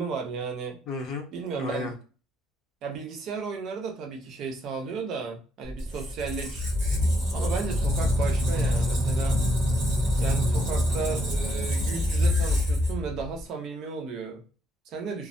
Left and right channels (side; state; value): both; normal; correlation 0.74